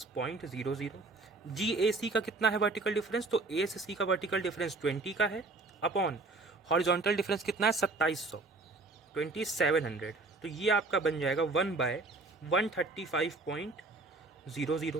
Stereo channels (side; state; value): left; quieter; 3.5 dB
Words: जी ए सी का कितना है वर्टिकल डिफरेंस? तो ए से सी का वर्टिकल डिफरेंस 20 का है, अपॉन हॉरिजॉन्टल डिफरेंस कितना है? 2700, 2700। तो ये आपका बन जाएगा